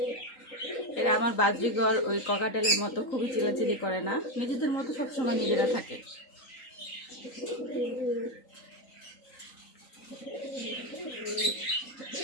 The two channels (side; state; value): right; late; 3.9 ms